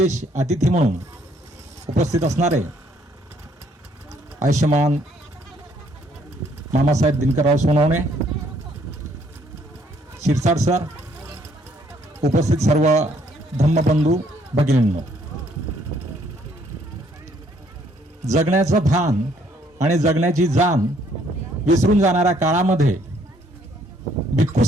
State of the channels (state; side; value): normal; both; correlation 0.66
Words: अतिथी म्हणून उपस्थित असणारे आयुष्यमान मामासाहेब दिनकरराव सोनवणे, शिरसाट सर, उपस्थित सर्व धम्मबंधू भगिनींनो, जगण्याचं भान आणि जगण्याची जाण विसरून जाणाऱ्या काळामध्ये भिक्खू